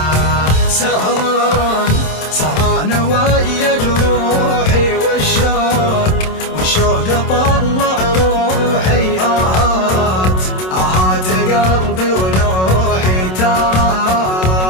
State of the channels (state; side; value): late; right; 27 ms